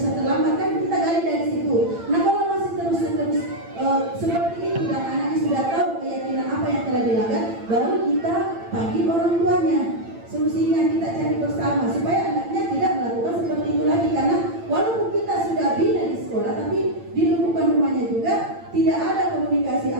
terlambat, kan kita gali dari situ. Nah kalau masih terus seperti itu dan anaknya sudah tahu keyakinan apa yang telah dilanggar, baru kita panggil orang tuanya. Solusinya kita cari bersama supaya anaknya tidak melakukan seperti itu lagi, karena walaupun kita sudah bina di sekolah, tapi di lingkungan rumahnya juga tidak ada komunikasi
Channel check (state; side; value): late; left; 8.8 ms